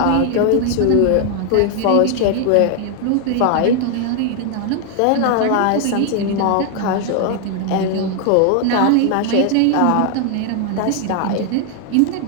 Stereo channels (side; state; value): both; different; correlation 0.00